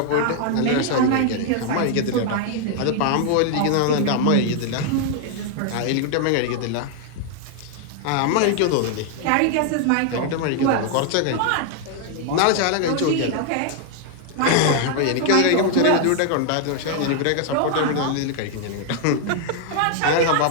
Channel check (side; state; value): both; different; correlation 0.00